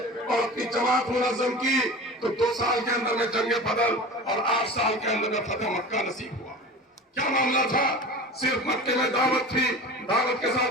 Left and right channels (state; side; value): normal; both; correlation 0.35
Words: और अपनी जमात मुनज़्ज़म की तो 2 साल के अंदर में जंग बदर और 8 साल के अंदर में फतह मक्का नसीब हुआ। क्या मामला था? सिर्फ मक्के में दावत थी, दावत के साथ